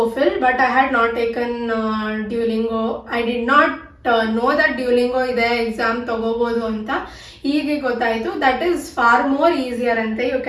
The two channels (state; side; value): identical; both; correlation 1.00